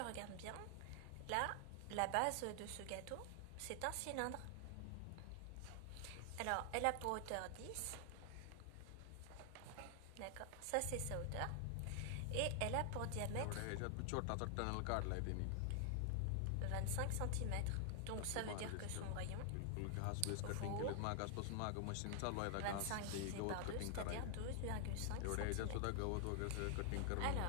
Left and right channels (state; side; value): different; both; correlation 0.00